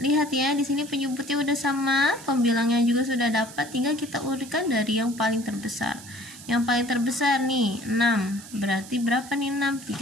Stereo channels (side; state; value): right; noise; hiss, 16 dB below the sound